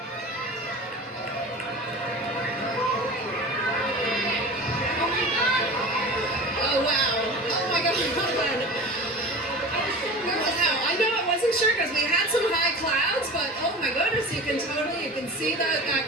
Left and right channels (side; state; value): both; normal; correlation 0.35